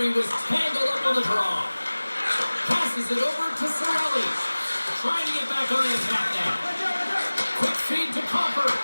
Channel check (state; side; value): inverted; both; correlation -1.00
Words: was tangled up on the draw. Passes it over to Sorellis. Trying to get back on the attack now. Quick feed to Copper.